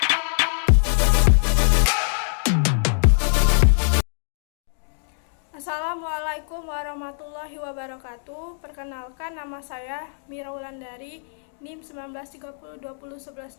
Assalamualaikum warahmatullahi wabarakatuh. Perkenalkan, nama saya Mira Wulandari, NIM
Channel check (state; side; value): silent; right; digital silence